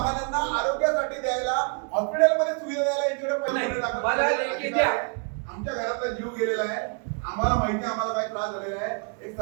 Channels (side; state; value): left; quieter; 36.4 dB